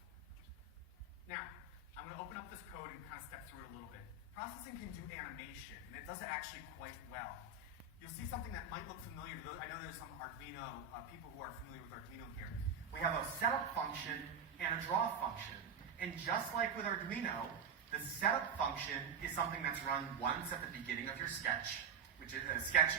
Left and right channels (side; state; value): left; quieter; 5.3 dB